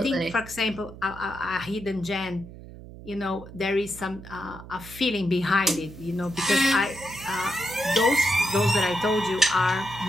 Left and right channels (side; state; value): right; noise; hum, 16 dB below the sound